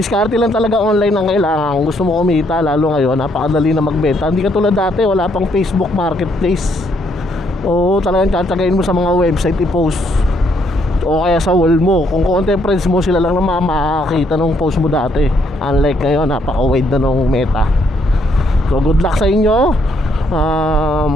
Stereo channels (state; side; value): normal; both; correlation 0.71